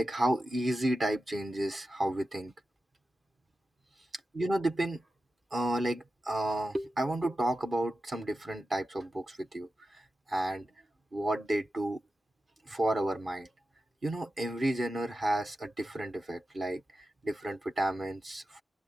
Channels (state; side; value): normal; both; correlation 0.92